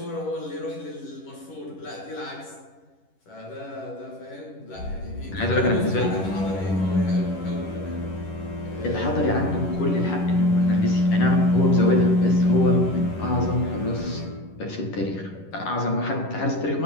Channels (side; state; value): right; late; 11 ms